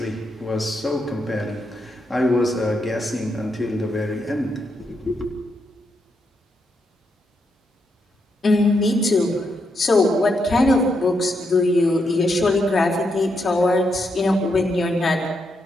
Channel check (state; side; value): normal; both; correlation 0.81